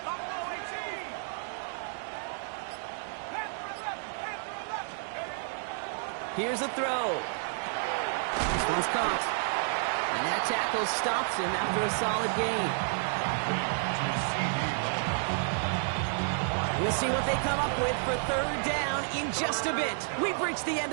Here's a throw. This one's caught. And that tackle stops him after a solid gain. We'll see what they come up with for 3rd down in just a bit. We've reached the end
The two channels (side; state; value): left; silent; 57 dB below the other